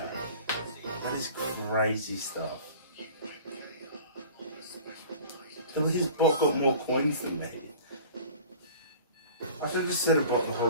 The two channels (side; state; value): both; inverted; correlation -0.43